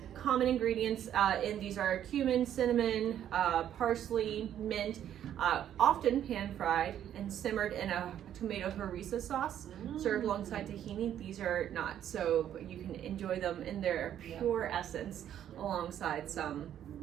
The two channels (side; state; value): left; quieter; 10.5 dB